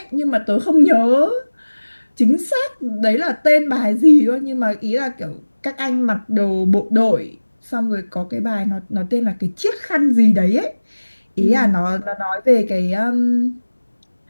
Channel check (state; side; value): inverted; both; correlation -1.00